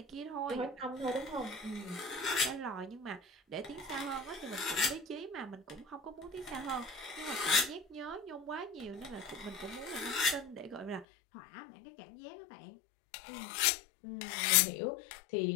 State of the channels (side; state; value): right; drops out; at 11.1 s